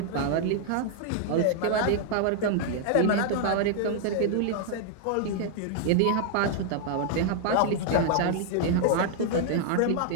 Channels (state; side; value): different; both; correlation 0.00